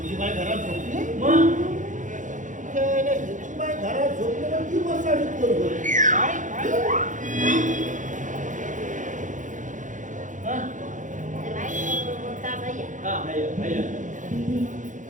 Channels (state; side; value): late; left; 0.37 ms